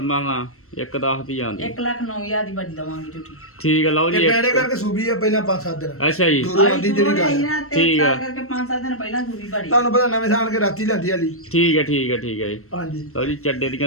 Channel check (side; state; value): right; late; 0.63 ms